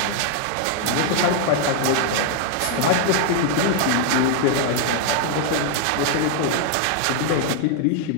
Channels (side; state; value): both; different; correlation 0.00